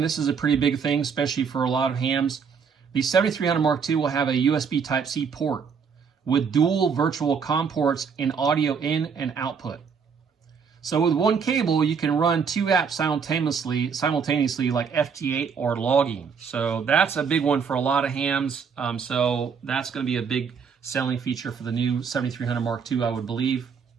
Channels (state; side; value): quieter; left; 6.2 dB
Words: this is a pretty big thing, especially for a lot of hams, the 7300 Mark II will have a USB Type-C port with dual virtual COM ports and audio in and output. So with one cable, you can run 2 apps simultaneously like FT8 or logging. So that's a big one for a lot of hams. So that's going to be a big selling feature for the new 7300 Mark II, I would believe.